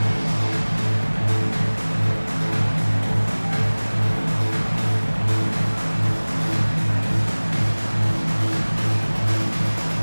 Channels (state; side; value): inverted; both; correlation -1.00